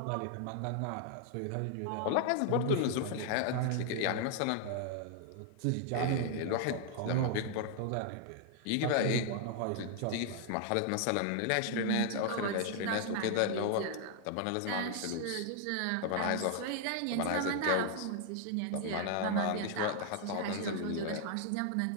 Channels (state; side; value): different; both; correlation 0.00